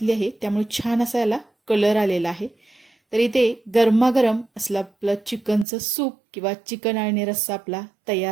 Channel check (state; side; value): drops out; left; at 5.7 s